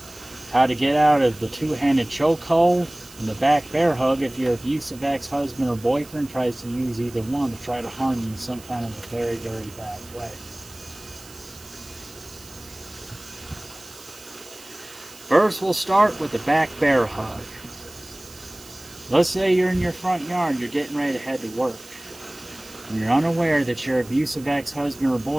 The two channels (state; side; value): noise; right; hiss, 20 dB below the sound